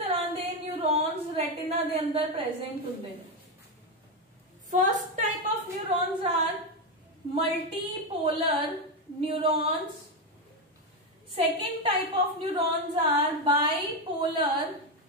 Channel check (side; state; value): both; normal; correlation 0.09